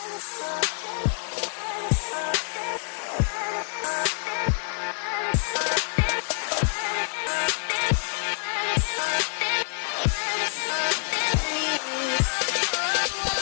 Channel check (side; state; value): right; silent; 56 dB below the other